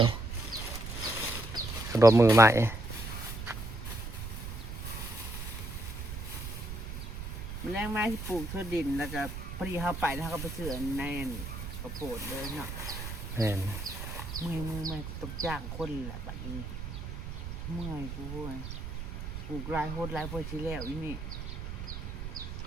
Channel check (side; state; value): right; noise; rumble, 7 dB below the sound